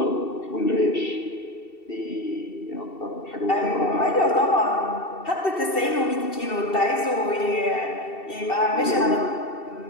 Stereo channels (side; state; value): right; late; 2.7 ms